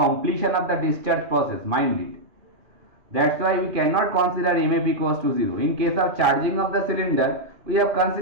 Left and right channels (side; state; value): left; late; 2.4 ms